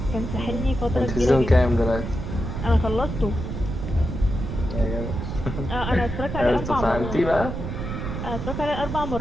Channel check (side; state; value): right; noise; rumble, 5 dB below the sound